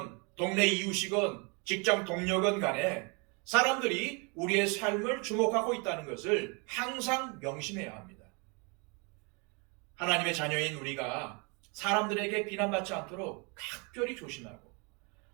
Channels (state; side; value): quieter; left; 32.2 dB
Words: 동네 이웃이건 직장 동료건 간에 사람들이 우리의 삶을 주목하고 있다는 것을 항상 명심해야 합니다. 하나님의 자녀인 우리가 사람들에게 비난받지 않도록 각별히 조심하고